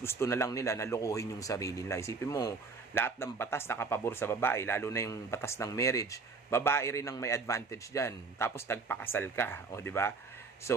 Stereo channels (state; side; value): quieter; left; 4.4 dB